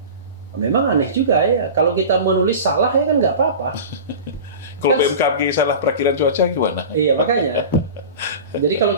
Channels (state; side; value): inverted; both; correlation -0.33